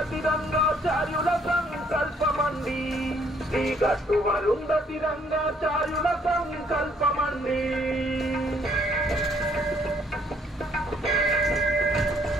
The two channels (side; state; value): both; normal; correlation 0.65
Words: రంగాచార్యుల సంకల్పమండి శ్రీ గట్టు అరుంధతి రంగాచార్యుల సంకల్పమండి